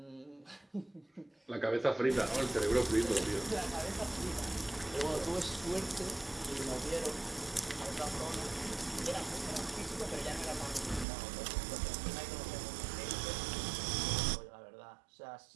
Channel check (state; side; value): drops out; left; at 11.1 s